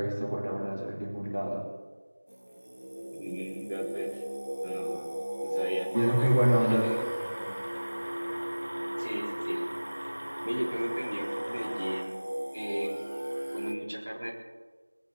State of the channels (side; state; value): both; inverted; correlation -1.00